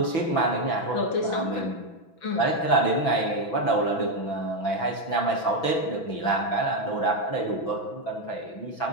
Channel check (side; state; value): right; late; 6.1 ms